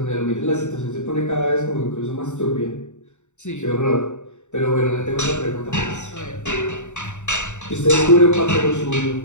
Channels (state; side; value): late; right; 0.84 ms